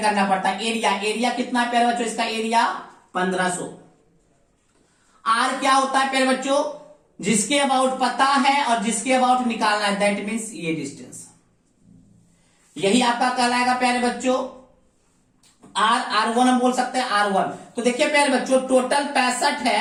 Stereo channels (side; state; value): both; identical; correlation 1.00